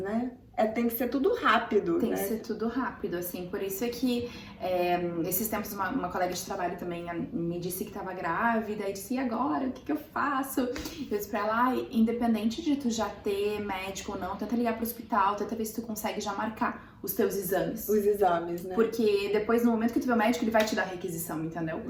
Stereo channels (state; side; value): identical; both; correlation 1.00